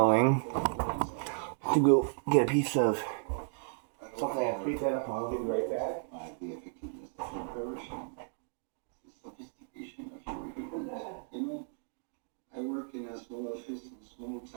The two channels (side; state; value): left; silent; digital silence